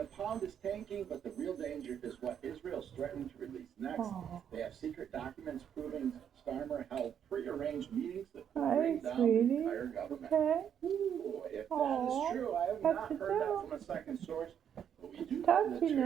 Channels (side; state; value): left; quieter; 8.7 dB